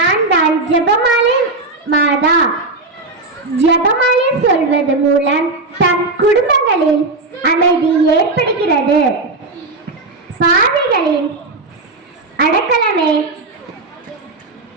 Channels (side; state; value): left; quieter; 3.3 dB